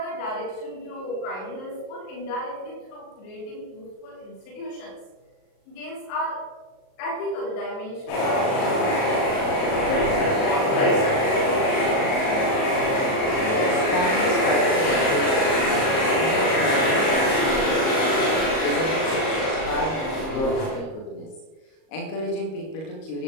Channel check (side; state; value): right; late; 38 ms